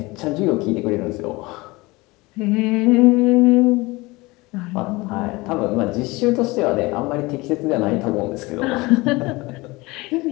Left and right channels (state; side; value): quieter; right; 22.6 dB